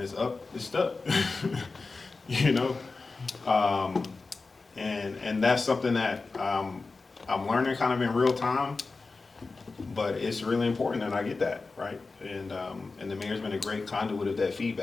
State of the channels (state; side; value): quieter; right; 3.9 dB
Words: it's up, it's stuck. And that's something that I'm learning kind of in real time. But it's really important that I get that, right? And the mayor's been a great conduit of that